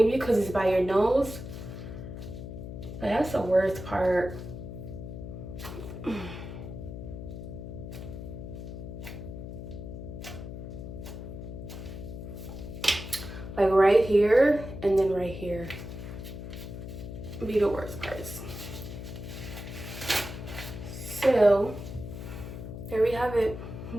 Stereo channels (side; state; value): left; noise; hum, 9 dB below the sound